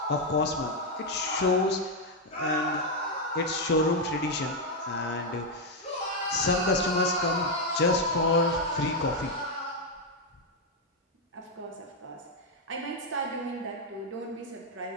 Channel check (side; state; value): both; normal; correlation 0.01